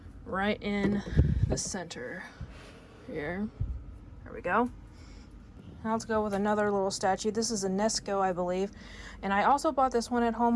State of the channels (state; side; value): identical; both; correlation 1.00